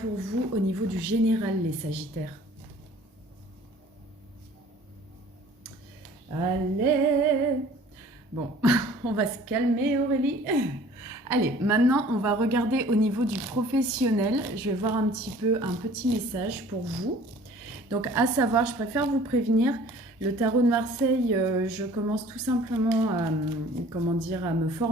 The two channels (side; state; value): both; normal; correlation 0.50